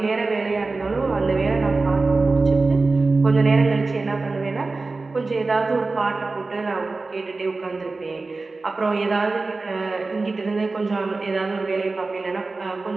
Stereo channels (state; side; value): quieter; left; 3.6 dB